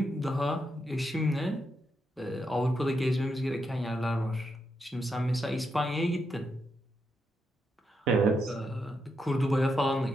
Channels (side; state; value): both; normal; correlation 0.83